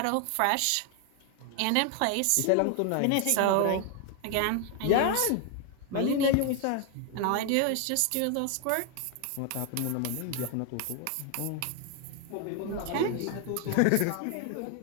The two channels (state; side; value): different; both; correlation 0.01